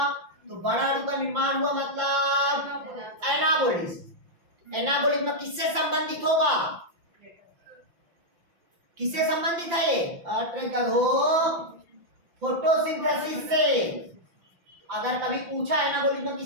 तो बड़ा अणु का निर्माण हुआ मतलब एनाबॉलिज्म। एनाबॉलिज्म किससे संबंधित होगा? किससे संबंधित है ये? फोटोसिंथेसिस से। अगर कभी पूछा एनाबॉलिज्म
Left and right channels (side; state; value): left; late; 5.8 ms